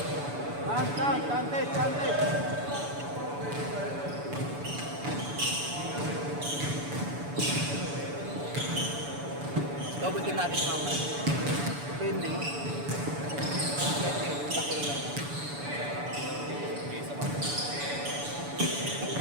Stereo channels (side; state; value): left; late; 7.0 ms